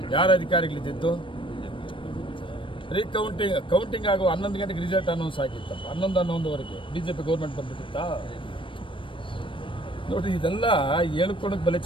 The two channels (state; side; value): late; right; 0.25 ms